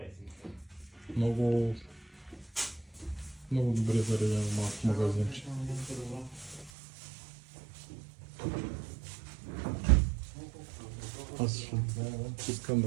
Много добре заредено малко магазинче. Аз искам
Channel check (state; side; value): drops out; left; at 6.7 s